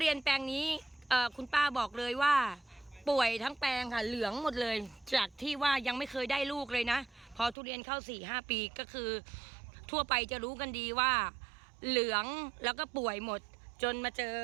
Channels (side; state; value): left; drops out; at 7.6 s